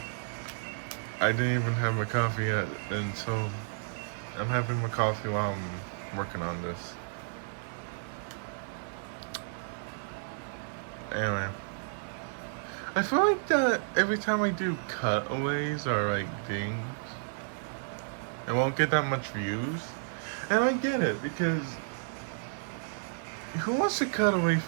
I didn't even have my coffee yet, and so I'm having my coffee while I'm working on this. Anyway, I feel like that every time I do cutaways or like things, it won't get that much views. And I get it, because who wants to cut away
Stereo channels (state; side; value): silent; left; digital silence